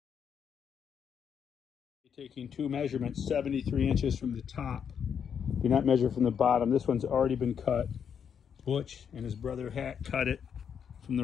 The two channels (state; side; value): quieter; right; 7.6 dB